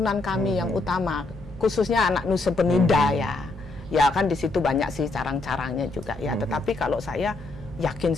kami yang utama, khususnya anak Nusa Penida ya kan di situ banyak sih carang-carangnya juga ya. Tetapi kalau saya yakin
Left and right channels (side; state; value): right; quieter; 3.2 dB